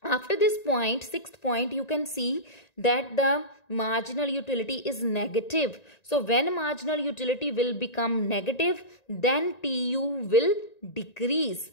After this point, 6th point, you can see that the marginal utility is negative. So when marginal utility will become negative, then TU will decrease.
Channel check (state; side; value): late; right; 1.9 ms